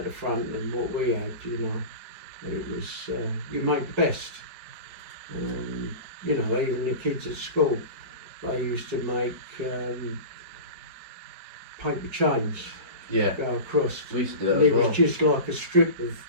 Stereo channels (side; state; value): left; late; 5.3 ms